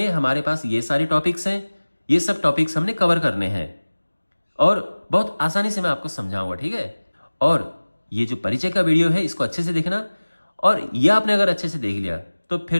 हमारे पास ये सारे टॉपिक्स हैं। ये सब टॉपिक्स हमने कवर करने हैं और बहुत आसानी से मैं आपको समझाऊंगा, ठीक है। और ये जो परिचय का वीडियो है इसको अच्छे से देखना। और ये आपने अगर अच्छे से देख लिया तो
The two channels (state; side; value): inverted; both; correlation -1.00